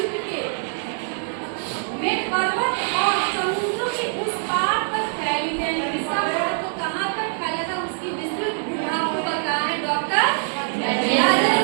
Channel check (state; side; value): silent; left; digital silence